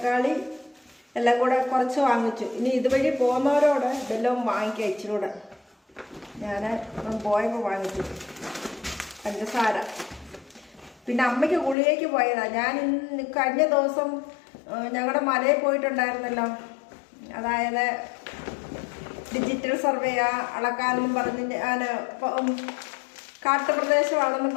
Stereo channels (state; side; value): drops out; right; at 11.8 s